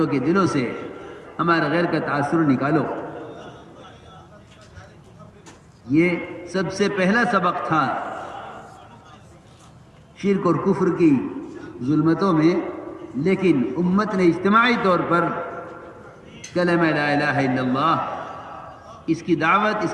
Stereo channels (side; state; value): both; identical; correlation 1.00